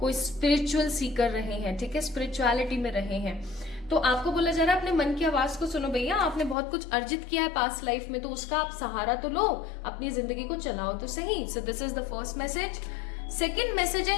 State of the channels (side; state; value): right; drops out; at 6.6 s